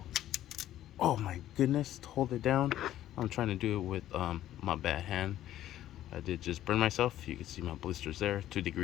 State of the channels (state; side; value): quieter; right; 12.8 dB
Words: oh my goodness, to hold it down. I'm trying to do it with my bad hand. I did just burn myself. You can see my blisters there,